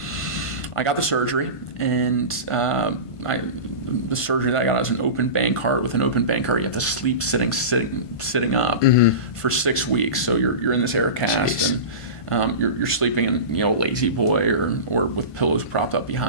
I got the surgery, and the surgery that I got was an open bank heart. With an open bank heart, you have to sleep sitting up for 6 weeks. So you're in this air cast, and you're sleeping in a lazy boy or with pillows propped up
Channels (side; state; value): right; late; 1.5 ms